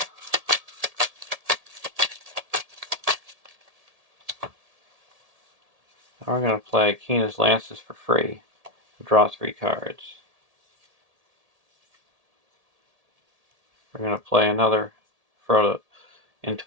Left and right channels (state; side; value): late; left; 1.7 ms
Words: Now we're going to play Keena's Lances for free. Draw 3 cards. We're going to play another Frodo